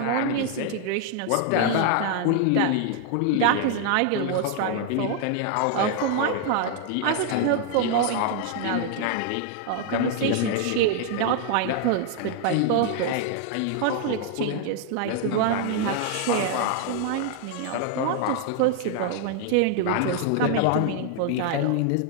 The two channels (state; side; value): different; both; correlation 0.00